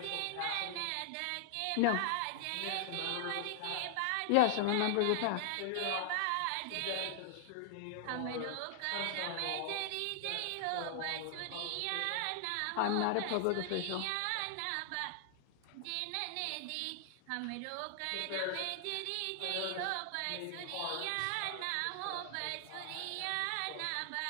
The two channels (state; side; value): different; both; correlation 0.00